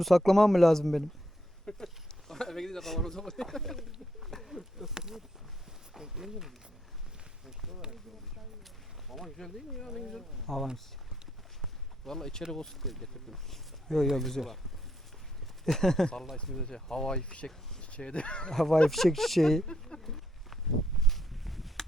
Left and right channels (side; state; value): both; normal; correlation 0.75